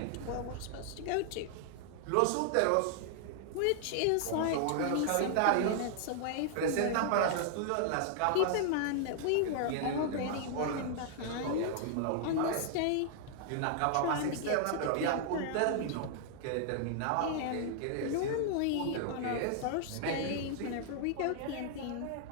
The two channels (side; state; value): both; different; correlation 0.00